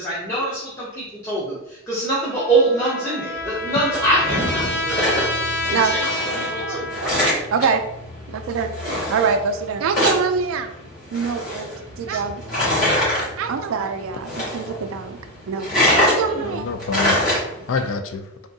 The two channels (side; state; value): both; normal; correlation 0.07